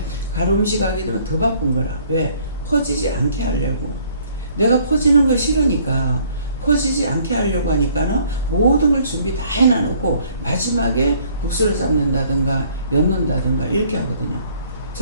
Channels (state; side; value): inverted; both; correlation -0.60